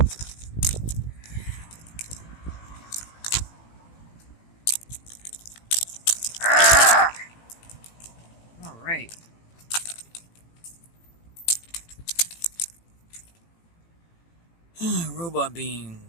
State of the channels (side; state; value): right; late; 18 ms